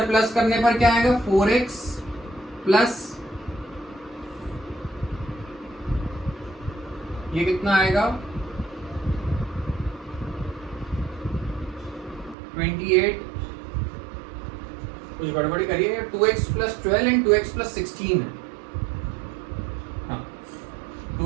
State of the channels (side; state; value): left; drops out; at 12.4 s